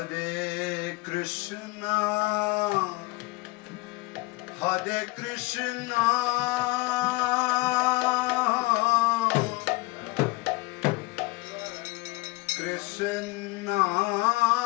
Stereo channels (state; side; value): quieter; right; 22.3 dB